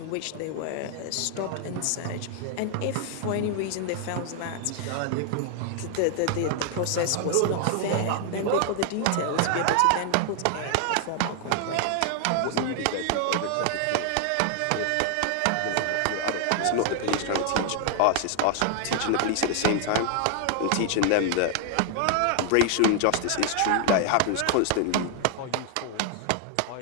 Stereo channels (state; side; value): different; both; correlation 0.00